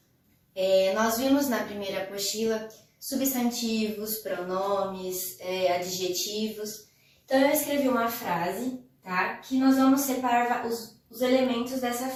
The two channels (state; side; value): identical; both; correlation 1.00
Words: Nós vimos na primeira apostila substantivos, pronomes, adjetivos. Então eu escrevi uma frase, tá? Que nós vamos separar os elementos dessa